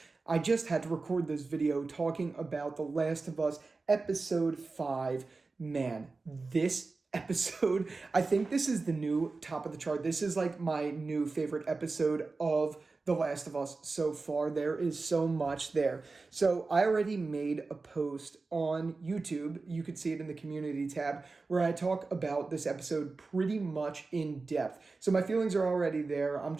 I just had to record this video talking about The Last of Us episode 5. Man, this episode, I think this is the new top of the chart. This is like my new favorite episode of The Last of Us so far. There is so much there. So I already made a post on YouTube. You could see it in the community tab where I talk about this episode pretty much in depth. So my feelings are already there. I'm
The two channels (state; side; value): quieter; left; 3.9 dB